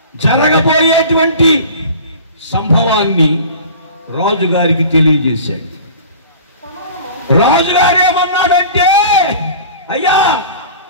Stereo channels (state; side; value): inverted; both; correlation -0.41